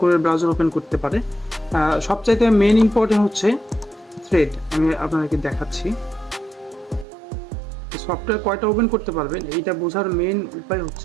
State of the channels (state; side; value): drops out; left; at 7.1 s